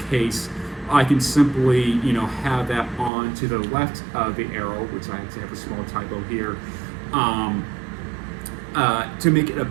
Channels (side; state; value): left; drops out; at 3.1 s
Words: case, I can simply, have that on to the left of the arrow, which I actually have a small typo here, to make it a